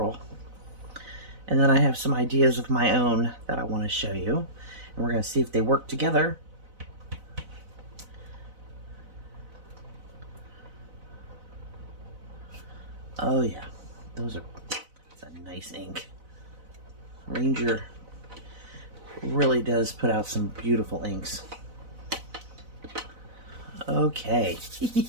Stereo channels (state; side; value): late; left; 4.0 ms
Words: And then I have some ideas of my own that I want to show you. And we're going to see if they work together. Oh yeah, that's a nice ink. Ranger really does put out some beautiful inks. Okay.